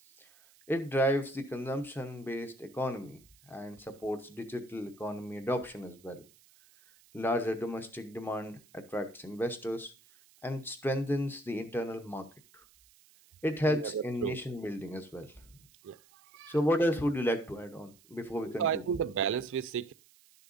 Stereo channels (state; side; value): noise; right; hiss, 27 dB below the sound